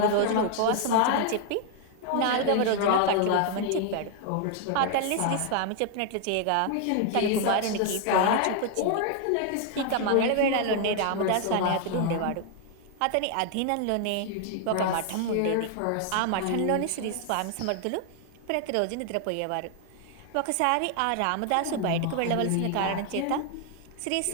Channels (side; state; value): both; different; correlation 0.00